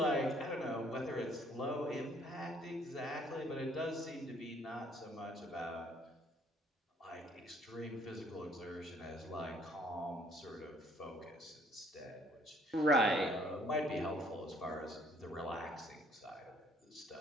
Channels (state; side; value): normal; both; correlation 0.62